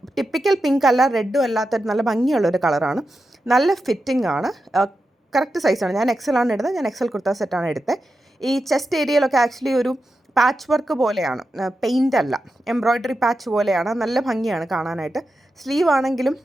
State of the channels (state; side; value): normal; both; correlation 0.89